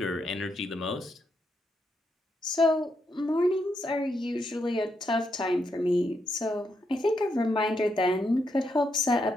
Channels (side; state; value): both; normal; correlation 0.80